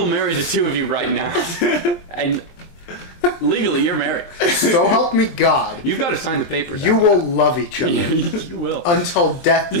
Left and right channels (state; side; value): late; right; 23 ms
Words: marry the two of you right now. And legally, you're married. So help me God, You've got to sign the papers. you will love each other you will. until death